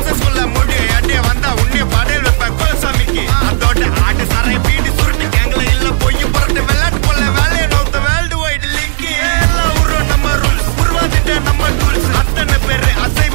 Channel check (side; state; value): left; silent; digital silence